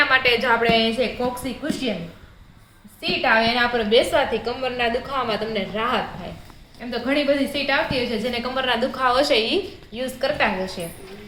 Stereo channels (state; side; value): identical; both; correlation 1.00